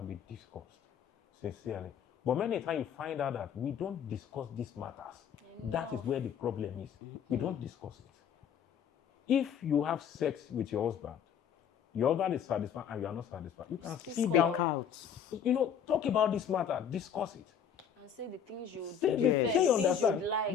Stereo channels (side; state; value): right; quieter; 7.9 dB